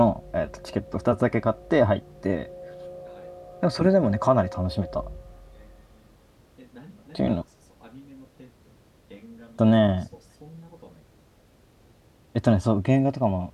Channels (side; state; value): both; identical; correlation 1.00